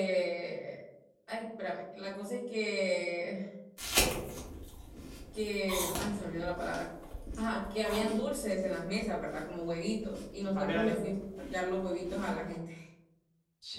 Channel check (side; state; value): both; identical; correlation 1.00